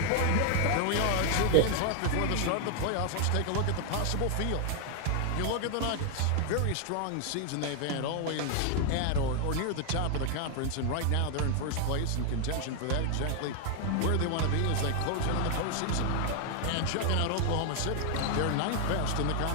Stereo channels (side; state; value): both; different; correlation 0.00